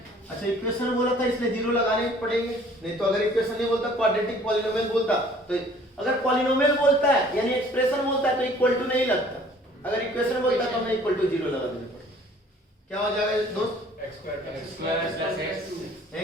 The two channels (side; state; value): both; normal; correlation 0.54